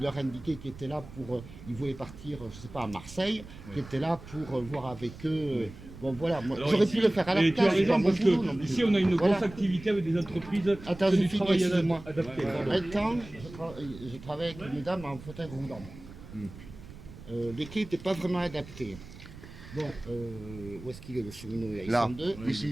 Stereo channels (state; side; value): noise; right; rumble, 16 dB below the sound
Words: indiquait qu'il était là pour, ils voulaient partir, je sais pas, à Marseille, qui était là pour voir avec eux. Bon voilà, moi, Alors j'aurais ici, pu le faire à la et tu as place. raison, mon parce boulot non que plus. ici on a une Voilà. grosse activité avec des entreprises Attends, de je du finis, travail excuse-moi. adapté. Un temps, je travaillais avec une dame en fauteuil roulant. Les quais n'étaient pas vraiment adaptés. Bon, où est-ce qu'il est le cheminot? Il Là, sont deux. ici.